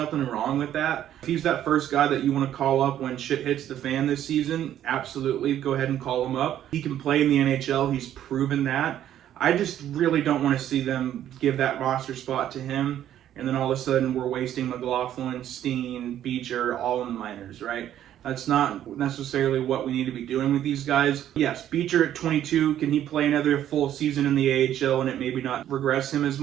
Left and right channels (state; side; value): quieter; left; 11.3 dB